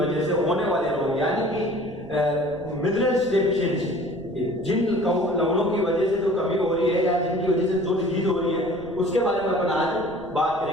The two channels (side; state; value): right; noise; rumble, 22 dB below the sound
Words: से होने वाले रोग, यानी कि मिनरल्स डेफिशिएंसी। जिन लवणों की वजह से जो कमी हो रही है या जिनकी वजह से जो डिजीज हो रही है उसके बारे में अपन आज बात